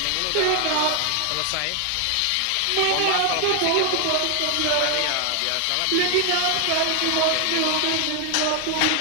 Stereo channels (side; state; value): both; different; correlation 0.00